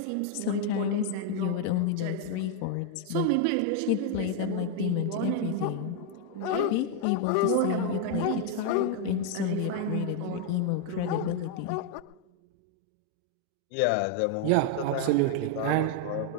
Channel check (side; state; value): both; different; correlation 0.00